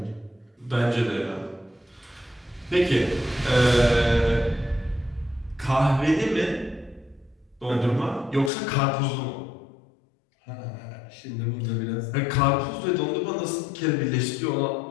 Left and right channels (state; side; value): drops out; right; at 8.5 s